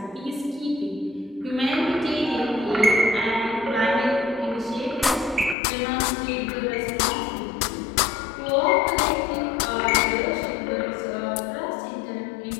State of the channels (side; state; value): right; drops out; at 5.6 s